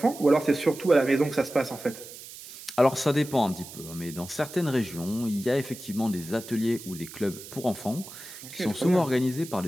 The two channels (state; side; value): noise; right; hiss, 15 dB below the sound